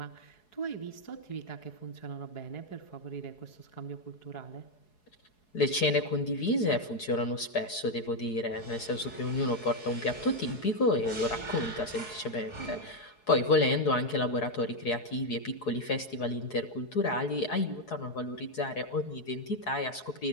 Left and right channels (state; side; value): late; right; 4.7 ms